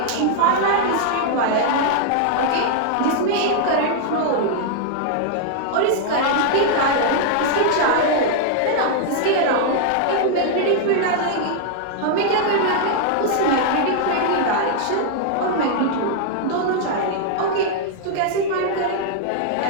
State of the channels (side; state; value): both; different; correlation -0.01